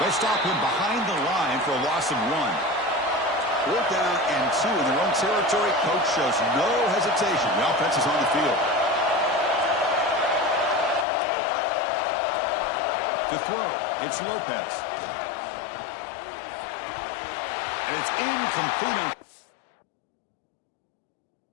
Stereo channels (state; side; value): drops out; right; at 11.1 s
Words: stop him behind the line for a loss of 1. 4th down and 2 in their own territory. Coach shows no hesitation. The offense is on the field. To throw, it's Lopez. And it's incomplete.